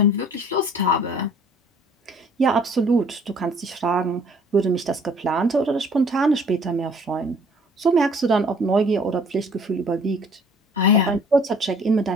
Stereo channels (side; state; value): both; normal; correlation 0.55